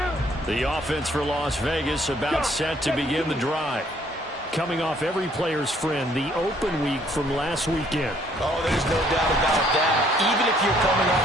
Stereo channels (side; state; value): both; normal; correlation 0.64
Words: The offense for Las Vegas about set to begin the drive. Coming off every player's friend, the open week from last weekend. Oh, there's no doubt about that. Even if you're coming off